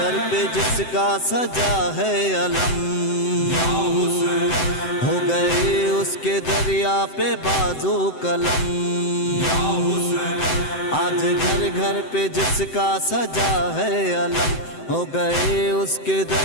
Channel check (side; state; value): right; late; 7.8 ms